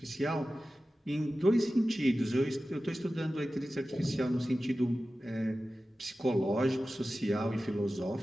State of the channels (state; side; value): normal; both; correlation 0.95